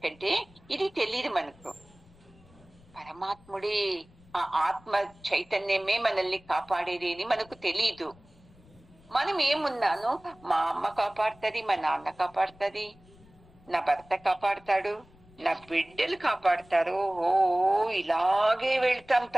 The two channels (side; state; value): left; noise; rumble, 26 dB below the sound